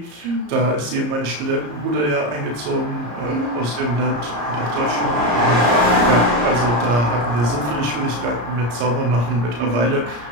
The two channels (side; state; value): left; late; 34 ms